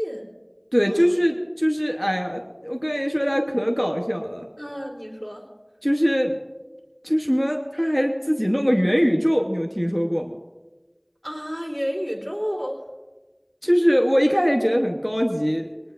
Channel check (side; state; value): both; identical; correlation 1.00